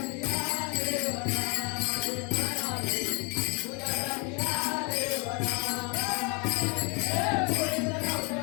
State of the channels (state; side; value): quieter; right; 32.4 dB